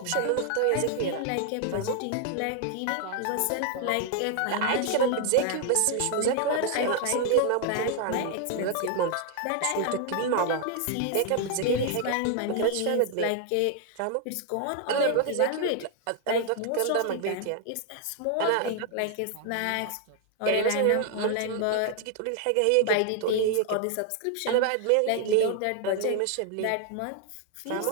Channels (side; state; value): both; different; correlation 0.00